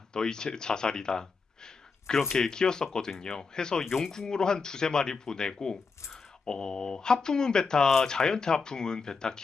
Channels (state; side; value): quieter; right; 4.7 dB